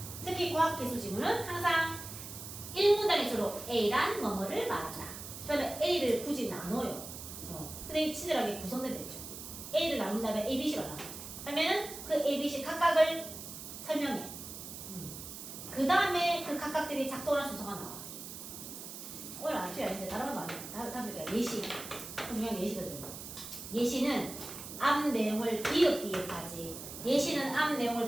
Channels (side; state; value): right; noise; hiss, 10 dB below the sound